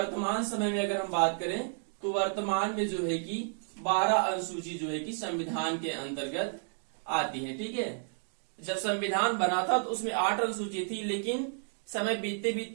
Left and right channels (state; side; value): silent; left; 57 dB below the other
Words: समय में अगर हम बात करें तो वर्तमान में जो है कि 12 अनुसूची जो है कि संविधान के अंतर्गत आती है। ठीक है, जब संविधान बना था तो उसमें 8 अनुसूची थी, लेकिन समय बीतते